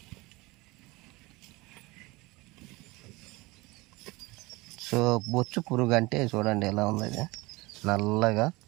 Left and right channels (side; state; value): left; quieter; 22.8 dB